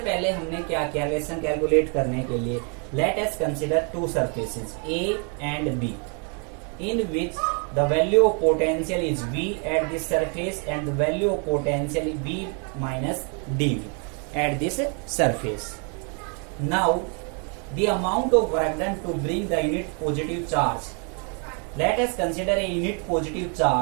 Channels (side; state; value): left; quieter; 38.3 dB